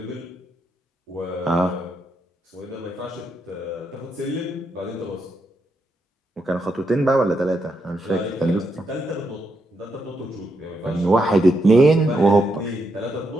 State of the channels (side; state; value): both; normal; correlation 0.81